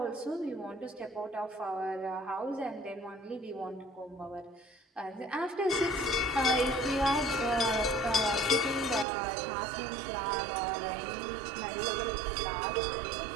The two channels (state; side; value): drops out; left; at 9.1 s